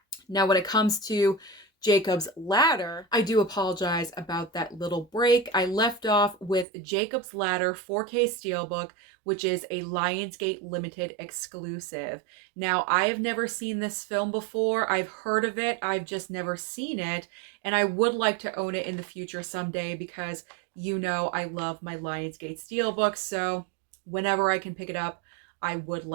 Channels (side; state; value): left; drops out; at 6.7 s